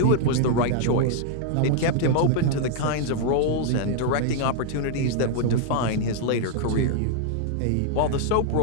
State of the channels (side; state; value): both; different; correlation 0.00